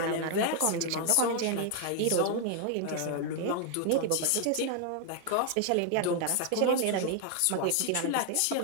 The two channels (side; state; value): both; different; correlation 0.00